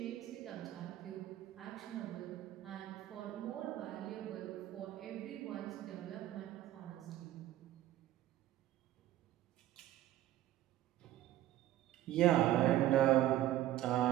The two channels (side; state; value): left; quieter; 13.9 dB